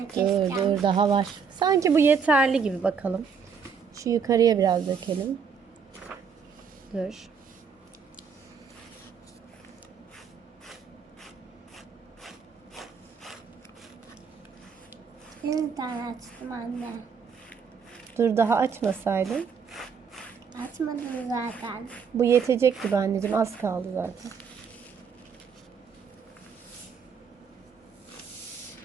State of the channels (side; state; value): left; quieter; 6.3 dB